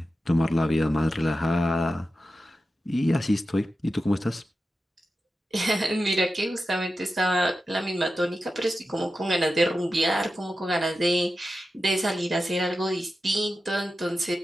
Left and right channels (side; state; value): both; normal; correlation 0.92